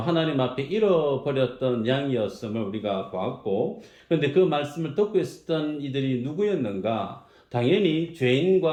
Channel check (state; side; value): identical; both; correlation 1.00